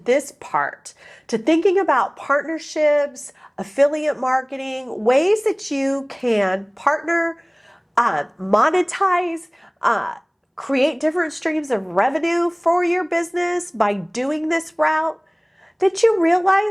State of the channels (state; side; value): identical; both; correlation 1.00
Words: part, to thinking about partnerships, affiliate marketing, ways that you can partner, monetize, create different streams of revenue for your business by doing this route, that you